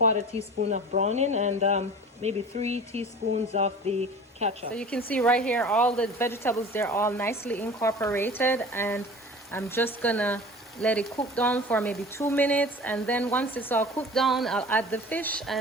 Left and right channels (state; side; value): normal; both; correlation 0.39